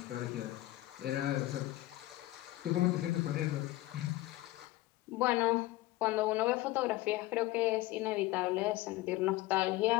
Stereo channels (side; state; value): right; quieter; 17.5 dB